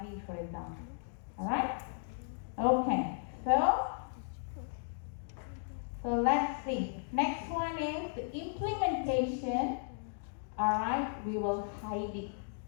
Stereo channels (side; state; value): right; silent; digital silence